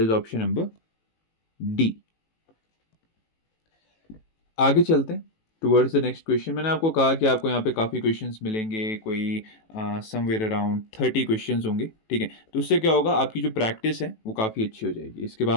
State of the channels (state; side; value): late; right; 18 ms